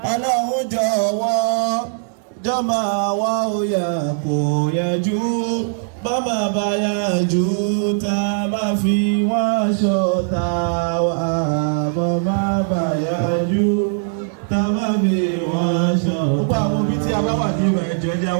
Ọlọ́run jọ̀wọ́ jọ́ máa wá òyà kó yanjú. Bọ́mọ bá yàjú tá a máa fi wọ́n ṣọ̀tá wa. Bọ́mọ bá yàjú tàbá mi wọ́n ṣọ́. Gbogbo àwọn òbí tí a bá wà ní ìwà ẹ̀jọ̀ ẹ̀jẹ̀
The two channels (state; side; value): silent; left; digital silence